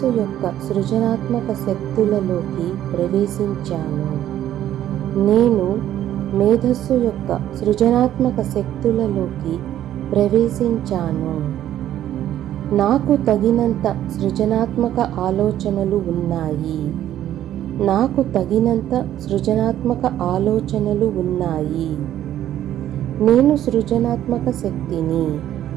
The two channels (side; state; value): left; quieter; 11.9 dB